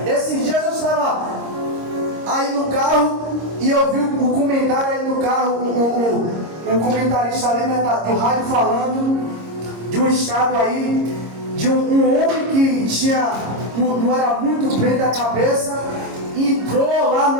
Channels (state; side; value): late; left; 26 ms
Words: Esses dias eu estava aí no carro e eu vi o comentário aí no carro, um comentarista ali, né, do rádio falando de um estado aí, de um homem que não era muito bem da cabeça, entrou lá